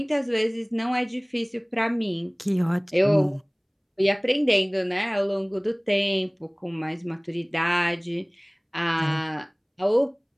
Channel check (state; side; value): identical; both; correlation 1.00